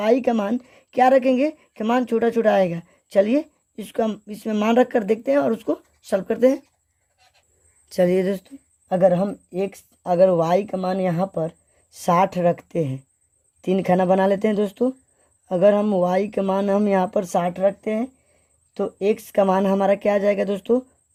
का मान क्या रखेंगे कि मान छोटा छोटा आएगा। चलिए इसको हम इसमें मान रख कर देखते हैं और उसको सॉल्व करते हैं। चलिए दोस्तों अगर y का मान यहाँ पर 60 रखते हैं, 3 खाना बना लेते हैं दोस्तों। अगर हम y का मान हम यहाँ पर 60 रखते हैं तो x का मान हमारा क्या आ जाएगा दोस्तों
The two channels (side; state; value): both; identical; correlation 1.00